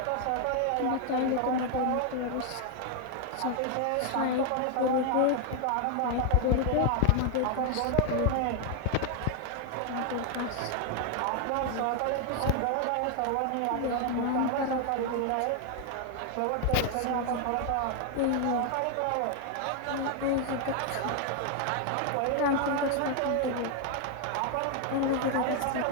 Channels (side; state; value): both; different; correlation 0.00